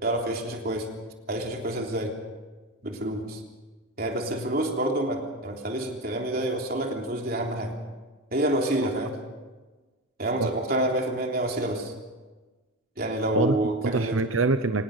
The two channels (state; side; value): normal; both; correlation 0.21